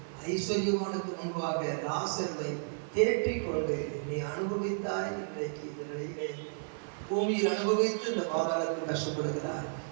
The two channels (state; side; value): silent; left; 56 dB below the other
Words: ஐஸ்வர்யமானுக்கு முன்பாக லாசர்வை தேற்றிக் கொண்டு நீ அனுபவித்தாய். இன்றைக்கு இந்த நிலையிலே பூமியில் அனுபவித்து இந்த பாதாளத்தில் கஷ்டப்படுகிறார்.